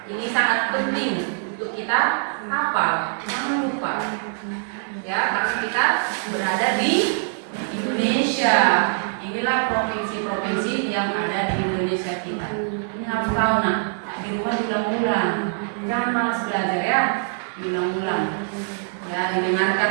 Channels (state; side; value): silent; left; digital silence